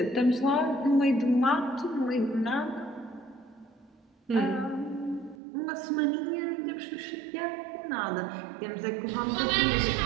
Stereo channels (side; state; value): left; drops out; at 5.4 s